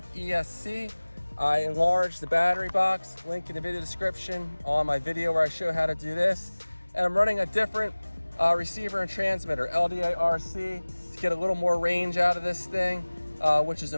ESC. I enlarged the battery box, link in the video description on my video where I show how to do this. And I'm running a different receiver and transmitter, LDA RC, to get a little more range out of this thing, which is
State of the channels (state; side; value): inverted; both; correlation -1.00